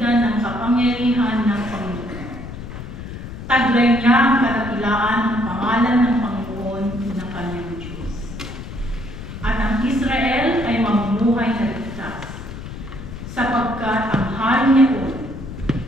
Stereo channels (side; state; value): left; noise; rumble, 10 dB below the sound